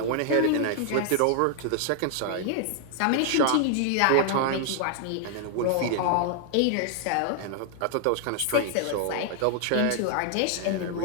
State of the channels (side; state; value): both; different; correlation 0.00